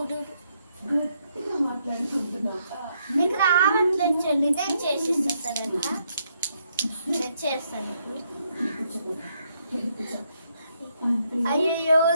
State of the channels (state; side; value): inverted; both; correlation -0.75